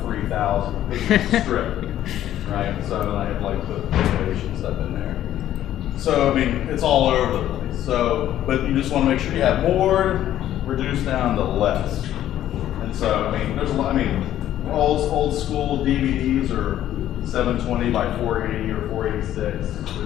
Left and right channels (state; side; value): quieter; right; 12.2 dB